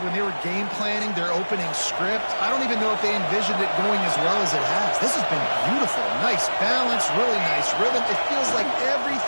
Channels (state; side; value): inverted; both; correlation -1.00